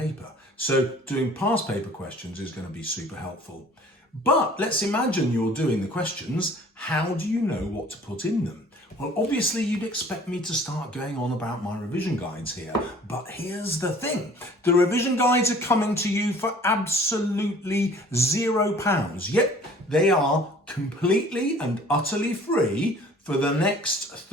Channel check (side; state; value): both; normal; correlation 0.51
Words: So doing past paper questions is going to be super helpful. But let's imagine you're doing the questions. How do you know what to put in them? Well, obviously you'd expect me to start going on about my revision guides here, but here's the thing. The revision guides are coming to you for absolutely £0. Yep, they are completely and utterly free for the next